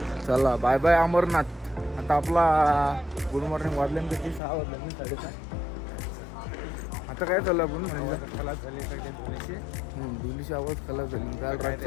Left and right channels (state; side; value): drops out; right; at 4.4 s